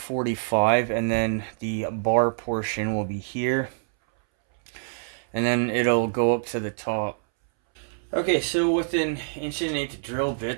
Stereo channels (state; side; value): silent; left; 61 dB below the other